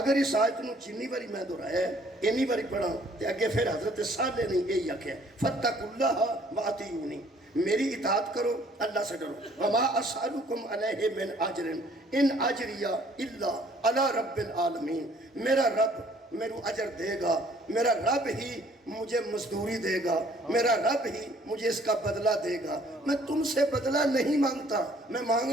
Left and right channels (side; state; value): both; normal; correlation 0.59